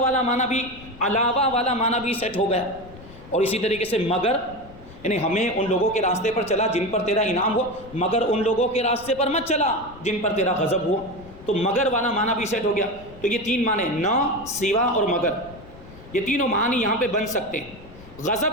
معنی بھی, علاوہ والا معنی بھی سیٹ ہو گیا. اور اسی طریقے سے مگر, یعنی ہمیں ان لوگوں کے راستے پر چلا جن پر تیرا انعام ہوا, مگر ان لوگوں کے راستے پر مت چلا جن پر تیرا غضب ہوا. تو مگر والا معنی بھی سیٹ ہو گیا. تو یہ 3 معنی, نہ, سوا اور مگر, یہ تینوں معنی یہاں پہ بن سکتے ہیں.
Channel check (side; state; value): left; noise; rumble, 19 dB below the sound